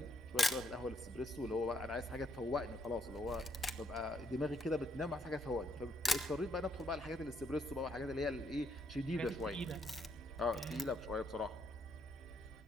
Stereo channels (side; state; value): both; normal; correlation 0.72